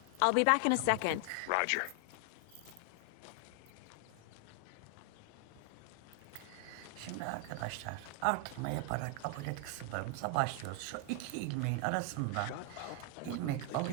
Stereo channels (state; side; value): different; both; correlation 0.00